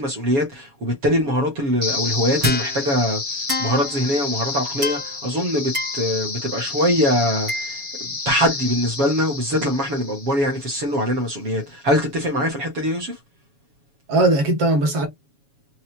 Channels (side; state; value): left; late; 7.2 ms